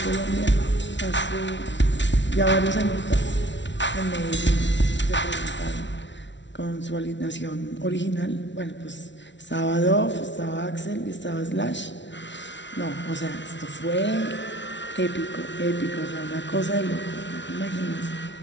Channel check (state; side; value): late; right; 0.53 ms